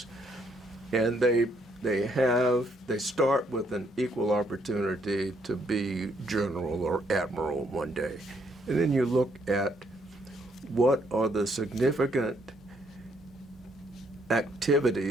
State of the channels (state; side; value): normal; both; correlation 0.71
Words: And they start with an equal opportunity to be general or admiral one day. And then you look at what are the significant